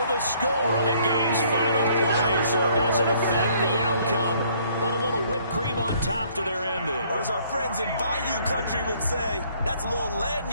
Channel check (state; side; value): inverted; both; correlation -0.62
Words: the score on the game's final play, so it doesn't affect the outcome, but a little whipped cream on top to their ending. Or as our friends in Bayou Country would say, that's a little